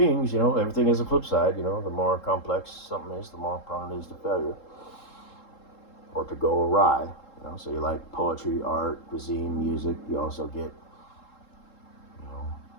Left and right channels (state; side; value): late; right; 3.7 ms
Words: everything has a flip side, the more complex something is, the more prone it is to failure or to go awry. So you like poetry, art, cuisine, music. You also get,